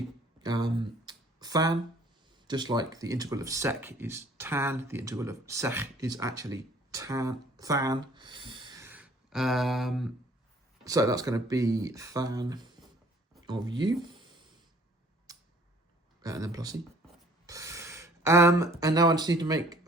tan, just like the integral of sec is tan. The integral of sec is actually tan. So that's going to be tan of u, and then plus c. And now I just need to make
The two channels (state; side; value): normal; both; correlation 0.56